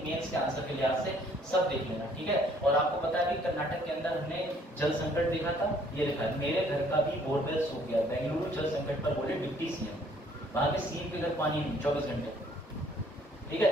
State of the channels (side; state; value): both; normal; correlation 0.61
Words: मेंस के आंसर के लिहाज से, सब देख लेना। ठीक है, और आपको पता है कि कर्नाटक के अंदर हमने जल संकट देखा था, ये लिखा है, मेरे घर का भी बोरवेल सूख गया, बेंगलुरु जल संकट पर बोले डिप्टी सीएम, वहां के सीएम के घर पानी नहीं 24 घंटे। ठीक